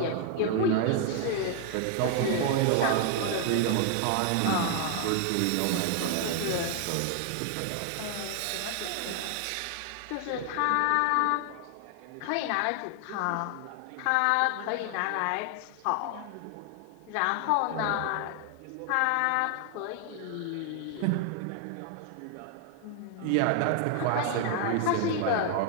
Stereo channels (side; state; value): both; different; correlation 0.00